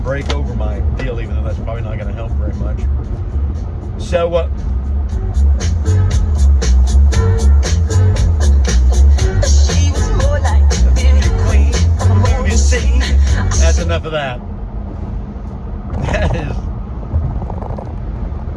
break over my deal, even though that's probably not going to help very much. So, she was more like a beauty queen from a movie scene. That's enough of that.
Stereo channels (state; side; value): identical; both; correlation 1.00